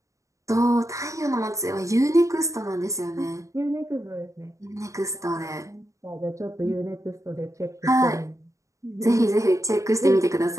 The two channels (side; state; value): left; late; 0.15 ms